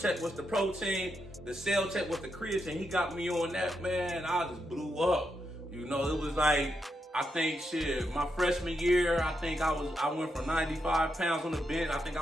was the protein. The Cell Tech was the creatine. He got me on that, man. I just blew up. You know, it was like, I think my freshman year, I think I went from 95 pounds on the bench. I think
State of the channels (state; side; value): normal; both; correlation 0.83